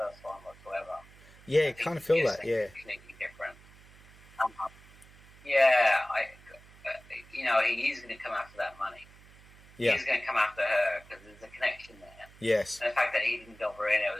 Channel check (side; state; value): right; noise; hum, 23 dB below the sound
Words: one whatsoever. Yeah, I kind of feel that. Yeah. Completely different. He's going to come after that money. Yeah. He's going to come after her because there's a connection there. Yes. And the fact that he didn't go for it, it